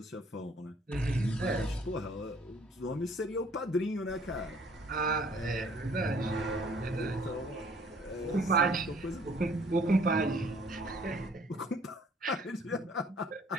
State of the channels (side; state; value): both; normal; correlation 0.58